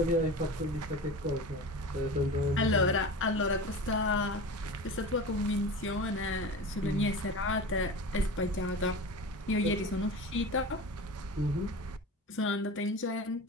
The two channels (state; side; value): normal; both; correlation 0.32